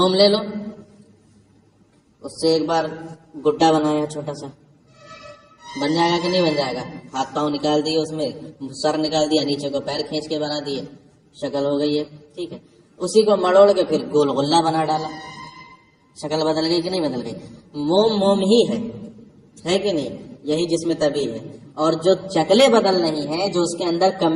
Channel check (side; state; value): both; identical; correlation 1.00